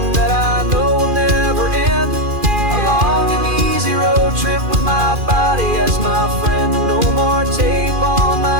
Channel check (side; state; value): left; late; 2.4 ms